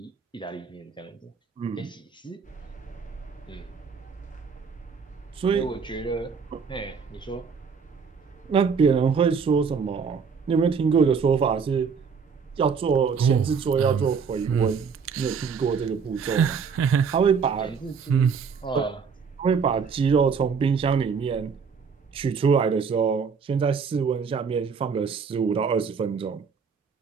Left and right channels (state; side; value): quieter; left; 5.9 dB